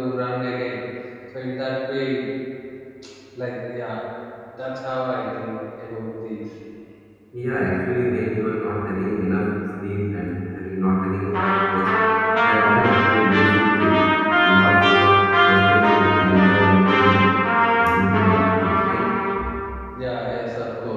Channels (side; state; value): both; identical; correlation 1.00